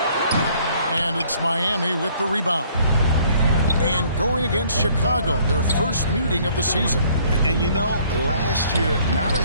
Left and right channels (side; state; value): both; inverted; correlation -0.60